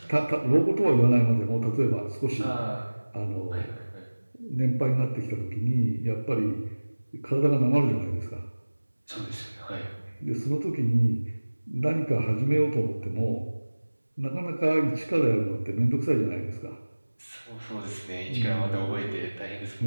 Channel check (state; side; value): inverted; both; correlation -1.00